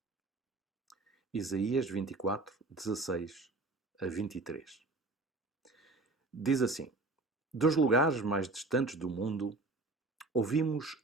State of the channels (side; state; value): left; quieter; 3.2 dB